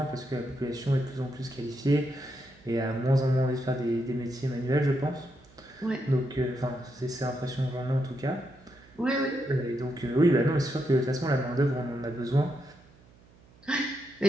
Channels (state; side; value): noise; right; hum, 27 dB below the sound